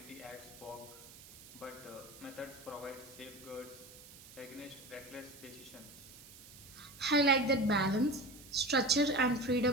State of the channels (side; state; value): right; noise; hiss, 18 dB below the sound